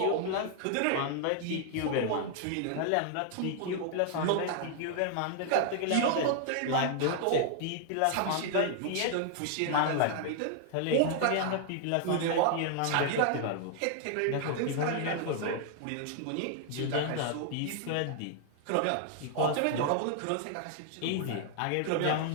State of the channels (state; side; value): different; both; correlation 0.00